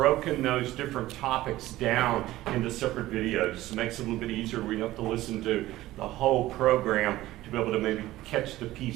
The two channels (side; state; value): left; quieter; 16.2 dB